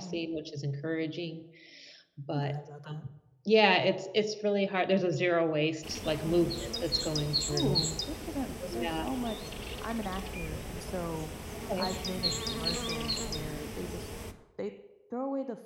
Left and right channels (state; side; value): identical; both; correlation 1.00